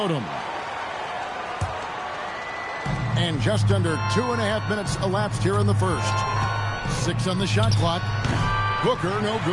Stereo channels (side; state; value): both; identical; correlation 1.00